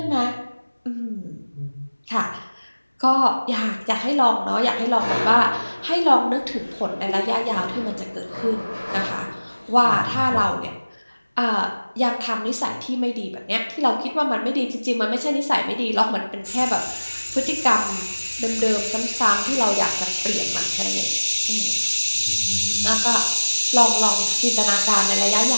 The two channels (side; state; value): both; inverted; correlation -1.00